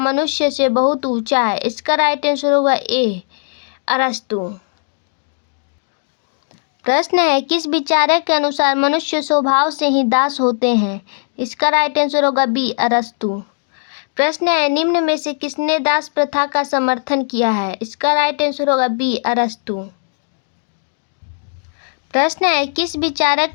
से बहुत ऊंचा है। इसका राइट आंसर होगा ए, अरस्तु। प्रश्न है, किस विचारक के अनुसार मनुष्य स्वभाव से ही दास होते हैं। इसका राइट आंसर होगा बी, अरस्तु। प्रश्न है, निम्न में से किसने दास प्रथा का समर्थन किया है। इसका राइट आंसर होगा बी, अरस्तु। प्रश्न है, किस विचारक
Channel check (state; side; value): silent; right; digital silence